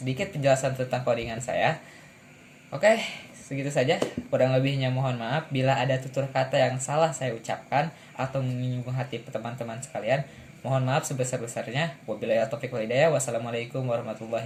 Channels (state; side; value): identical; both; correlation 1.00